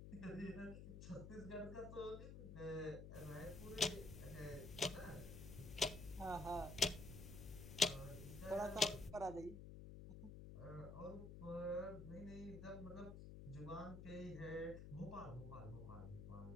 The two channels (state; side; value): noise; left; hum, 9 dB below the sound